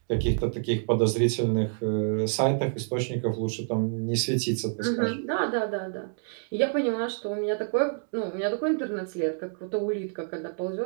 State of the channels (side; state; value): left; silent; digital silence